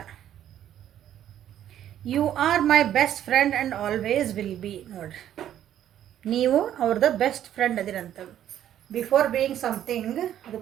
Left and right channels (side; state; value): left; quieter; 11.1 dB